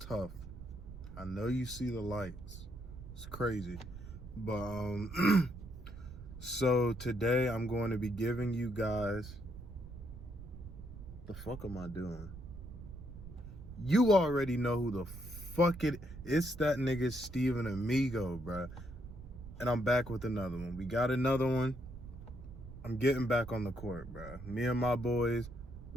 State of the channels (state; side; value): noise; right; rumble, 13 dB below the sound